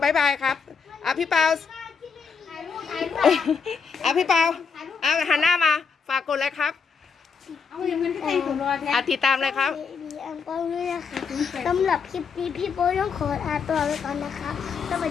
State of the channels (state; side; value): quieter; right; 5.7 dB